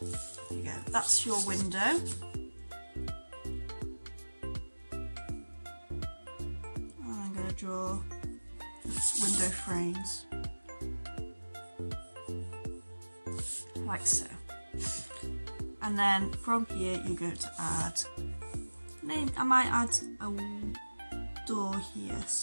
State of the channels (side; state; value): both; inverted; correlation -1.00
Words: There you go, that's your window. And I'm going to draw window frames, like so. And then from here you're going to add, I might add a door here,